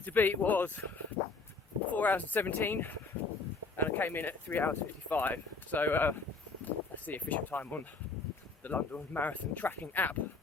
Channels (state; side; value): quieter; right; 3.9 dB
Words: to beat was 4 hours and 17 and I came in at 3 hours 55, so that's the official time on the London Marathon tracking app.